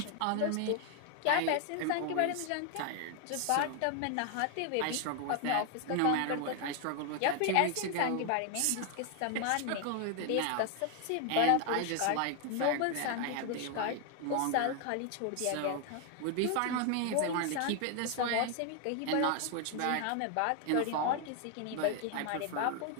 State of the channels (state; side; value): different; both; correlation 0.00